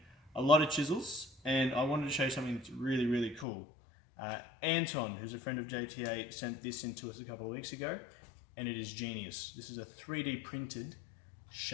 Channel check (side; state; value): right; drops out; at 3.5 s